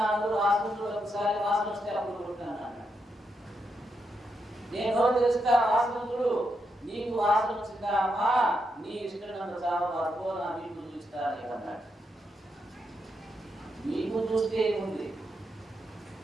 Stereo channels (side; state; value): both; normal; correlation 0.82